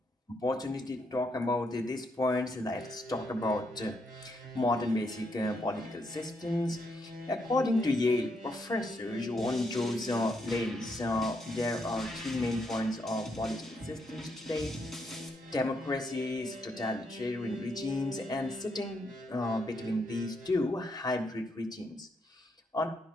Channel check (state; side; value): normal; both; correlation 0.77